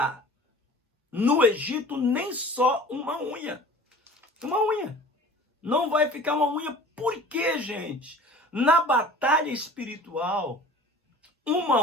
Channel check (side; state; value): both; normal; correlation 0.44